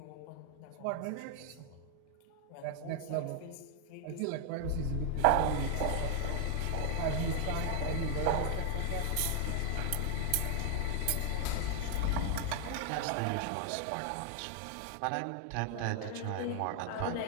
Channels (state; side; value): different; both; correlation 0.00